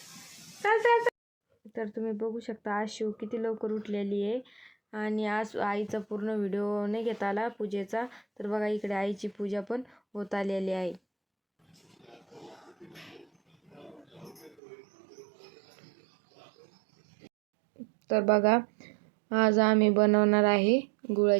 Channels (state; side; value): drops out; left; at 14.6 s